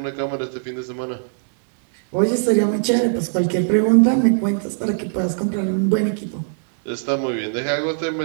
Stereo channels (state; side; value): silent; left; 63 dB below the other